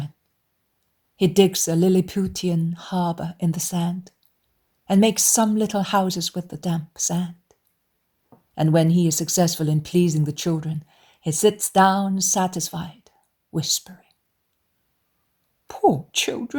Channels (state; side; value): identical; both; correlation 1.00